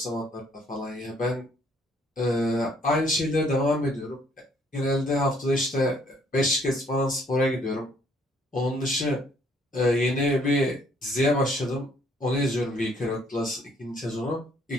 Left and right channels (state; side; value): normal; both; correlation 0.65